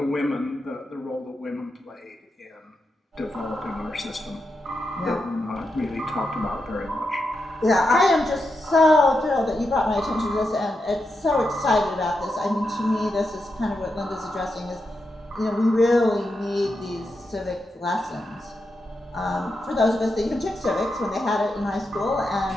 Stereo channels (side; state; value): both; normal; correlation 0.86